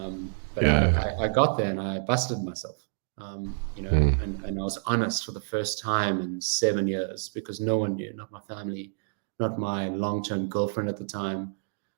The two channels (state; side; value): silent; left; digital silence